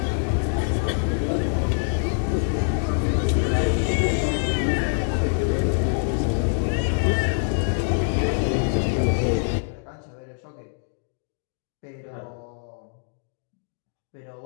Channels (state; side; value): silent; right; digital silence